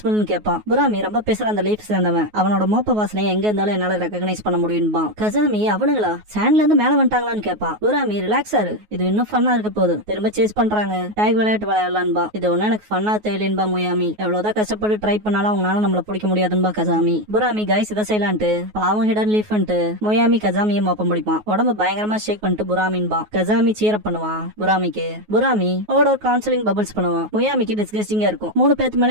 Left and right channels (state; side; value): late; left; 9.4 ms